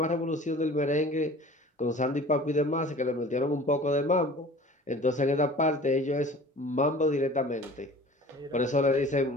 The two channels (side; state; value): both; normal; correlation 0.44